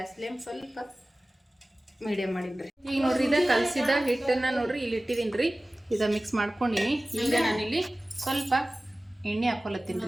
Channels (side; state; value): both; normal; correlation 0.97